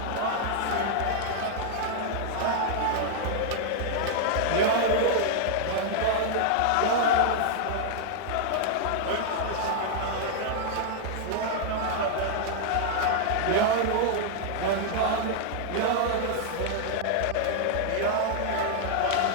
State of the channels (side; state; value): both; different; correlation -0.01